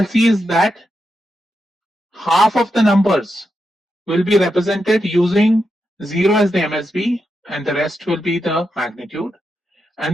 see is that half of the numbers will be represented using 0 as the MSB, and the rest will be the magnitude.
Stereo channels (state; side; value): normal; both; correlation 0.86